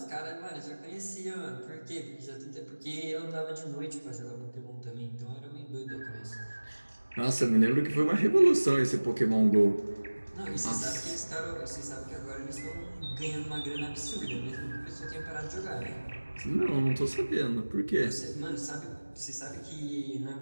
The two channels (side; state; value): both; inverted; correlation -1.00